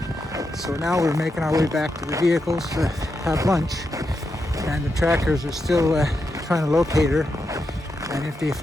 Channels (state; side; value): normal; both; correlation 0.85